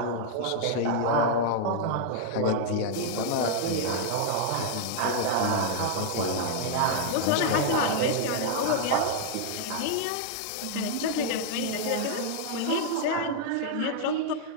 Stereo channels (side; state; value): both; different; correlation -0.01